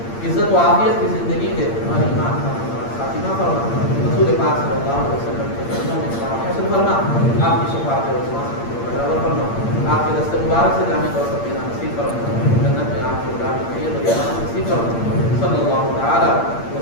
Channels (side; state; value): right; late; 8.7 ms